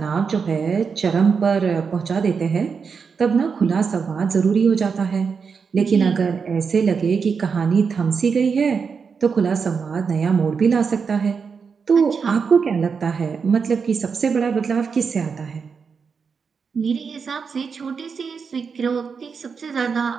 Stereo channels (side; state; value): left; quieter; 5.7 dB